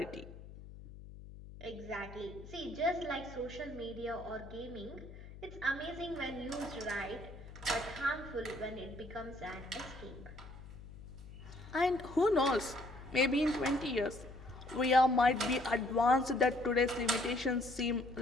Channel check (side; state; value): left; noise; hum, 15 dB below the sound